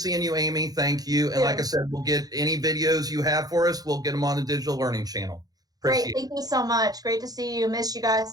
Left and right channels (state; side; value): late; left; 0.18 ms